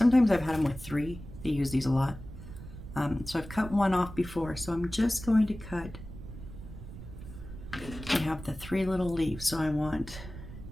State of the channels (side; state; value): right; noise; rumble, 13 dB below the sound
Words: I've had them with 3. They use these a lot. So I've cut one off before, so I'm just going to cut. I have the 3 little leaves, so I want